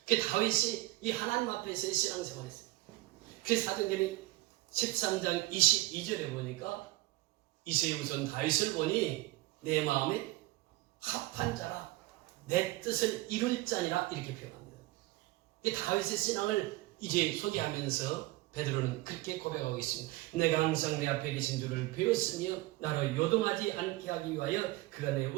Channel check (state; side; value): quieter; left; 19.2 dB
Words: 그 다윗이 이 하나님 앞에서의 신앙생활했어요. 그 사도행전 13장 22절에 보니까 이세 우선 다윗을 보니 내 마음에 합한 자라 내 뜻을 이룰 자니라 이렇게 표현합니다. 이 다윗의 신앙을 이제 소개하면서 베드로는 그렇게 고백하고 있습니다. 내가 항상 내 앞에 계신 줄을 배웠으며 나로 요동하지 않게 하기 위하여 그가 내